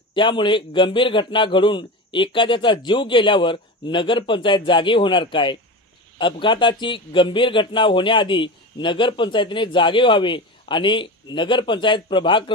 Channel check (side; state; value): both; normal; correlation 0.26